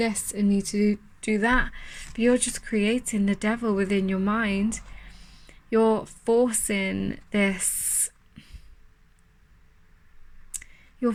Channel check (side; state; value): both; identical; correlation 1.00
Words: I need to do that. But you're just creating the devil within your mind. You're forcing this, you're